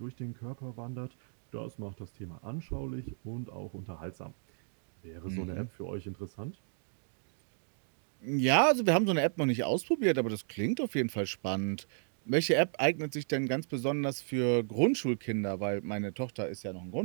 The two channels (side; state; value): left; silent; digital silence